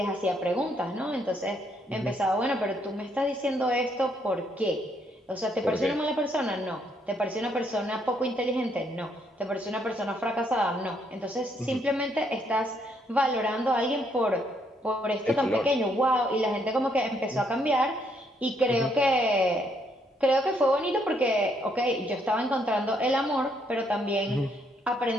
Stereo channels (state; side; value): normal; both; correlation 0.72